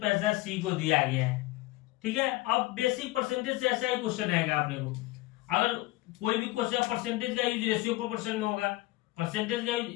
सी को दिया गया है, ठीक है। अब बेसिक परसेंटेज से ऐसा ही क्वेश्चन आएगा अपने को। अगर कोई भी क्वेश्चन परसेंटेज का यूज रेशियो प्रोपोर्शन में होगा, परसेंटेज का यूज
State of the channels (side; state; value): right; quieter; 19.0 dB